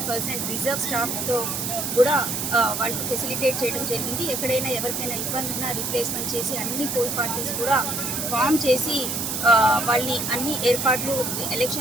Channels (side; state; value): right; noise; hiss, 2 dB below the sound